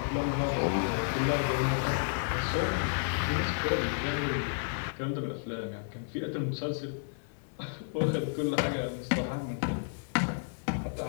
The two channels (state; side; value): silent; right; digital silence